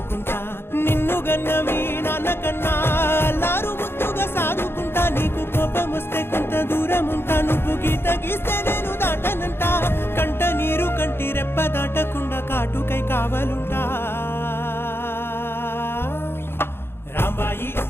నిన్ను గన్న మీ నాన్న కన్నా లారు ముద్దుగా సాదుకుంటా, నీకు కోపం వస్తే కొంత దూరం ఉంటా, నువ్వు గీత గీస్తే నేను దాటనంట, కంట నీరు కంటి రెప్ప దాటకుండా కాటుకై కావలుంటా. రాంబాయి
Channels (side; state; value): right; late; 0.11 ms